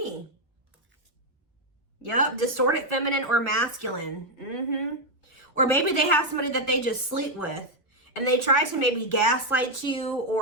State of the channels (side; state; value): both; normal; correlation 0.02